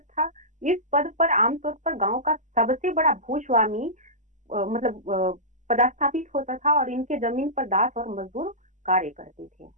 था। इस पद पर आमतौर पर गांव का सबसे बड़ा भूस्वामी मतलब पदस्थापित होता था और इनके जमीन पर दास और मजदूर कार्य करते थे।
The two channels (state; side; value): late; left; 0.35 ms